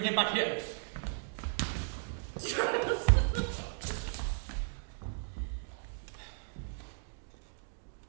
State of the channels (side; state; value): left; silent; digital silence